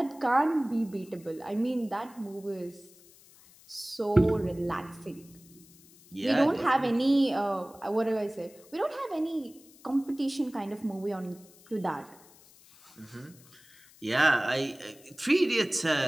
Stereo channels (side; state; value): left; noise; hiss, 25 dB below the sound